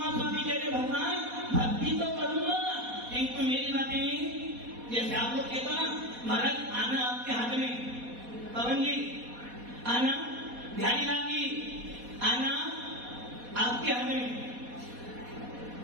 स्वामी कह रहे भगवान भक्ति तो करूंगा, किंतु मेरी बातें जैसे आप लोग कहते ना महाराज आना आपके हाथ में, पवन जी आना, बिहारी लाल जी आना आपके हाथ में,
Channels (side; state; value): left; late; 4.1 ms